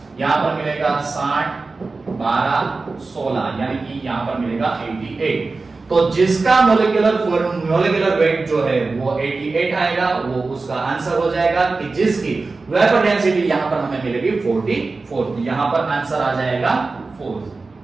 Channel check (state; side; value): quieter; left; 3.8 dB